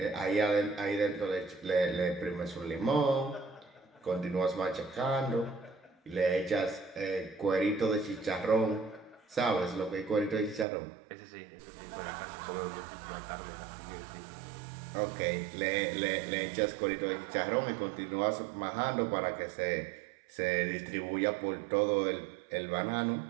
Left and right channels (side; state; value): left; drops out; at 10.7 s